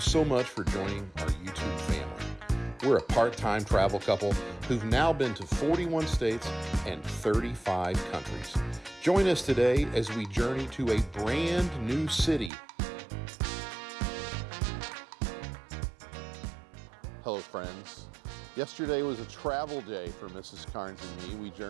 much for joining our YouTube family. We're a part-time travel couple who've now been to 41 states and 35 countries. Join us today as we journey to a brand new city. Hello, friends. Yesterday was a travel day for Mrs. Karnes and me. We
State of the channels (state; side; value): drops out; left; at 12.5 s